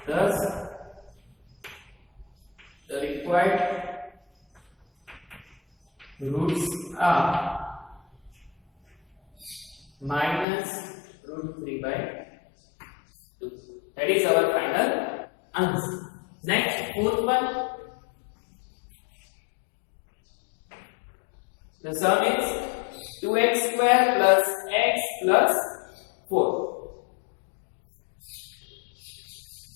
thus the required roots are minus root 3 by 2. That is our final answer. Next, fourth one. The sum is 2x square plus x plus 4.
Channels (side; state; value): right; drops out; at 10.5 s